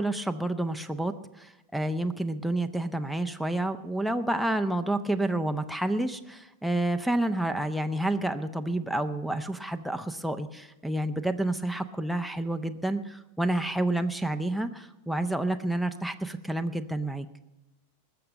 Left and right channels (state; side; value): normal; both; correlation 0.88